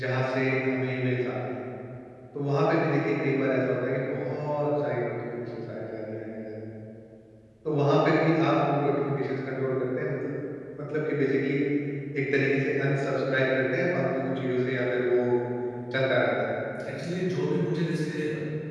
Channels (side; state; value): both; identical; correlation 1.00